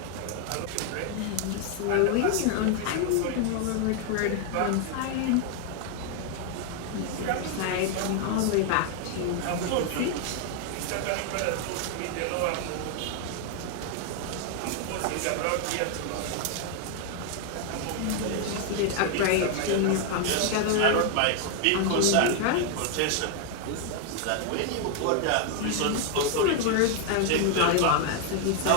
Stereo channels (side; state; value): both; different; correlation 0.00